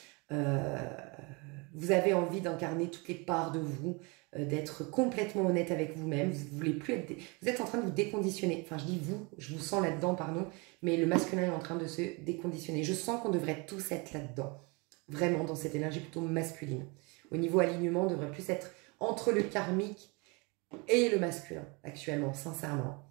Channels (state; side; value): quieter; left; 29.1 dB